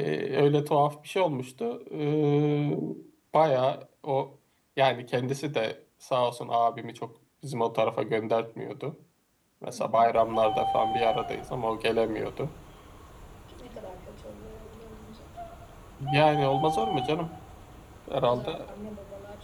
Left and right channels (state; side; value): identical; both; correlation 1.00